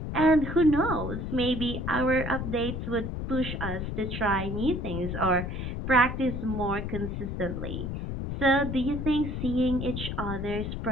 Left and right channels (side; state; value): left; noise; rumble, 4 dB below the sound